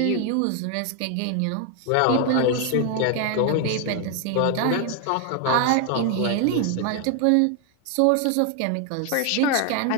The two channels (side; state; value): both; different; correlation 0.01